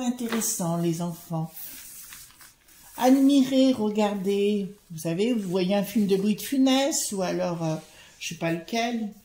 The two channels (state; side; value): identical; both; correlation 1.00